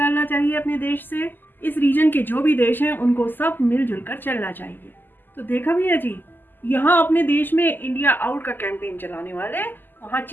चाहिए अपने देश से। इस रीजन के जो भी देश हैं उनको सब मिलजुल कर चलना चाहिए। तो देखा भैया जी, यहाँ अपने देश में इंडिया आउट का कैंपेन चलाने वाले वहाँ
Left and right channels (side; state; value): right; late; 0.091 ms